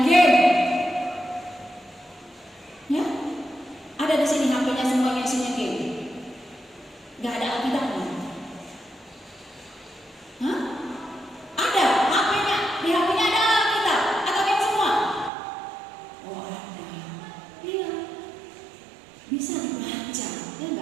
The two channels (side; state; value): left; drops out; at 15.3 s